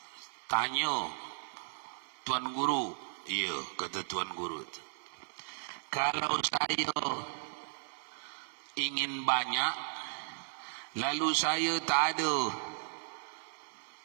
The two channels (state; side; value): silent; left; digital silence